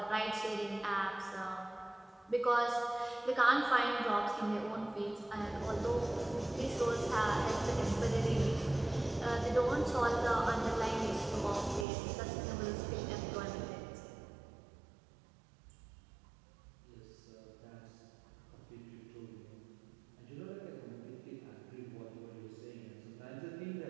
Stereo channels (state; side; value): drops out; left; at 11.9 s